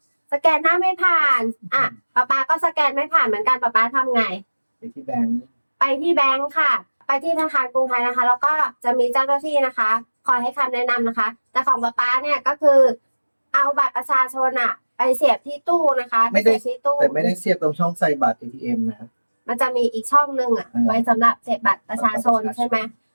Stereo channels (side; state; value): both; inverted; correlation -1.00